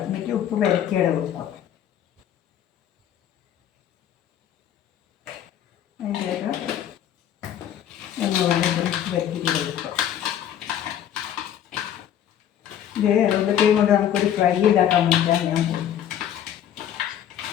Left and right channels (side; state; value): right; quieter; 10.3 dB